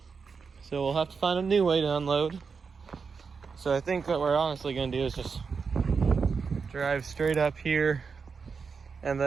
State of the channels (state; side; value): quieter; left; 5.4 dB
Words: so we'll have to find a new way to unload. So I think what we're honestly gonna do is just drive straight up here, and